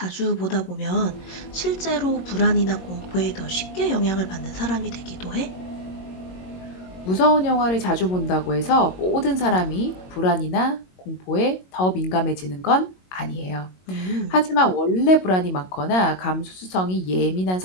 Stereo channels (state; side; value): late; right; 22 ms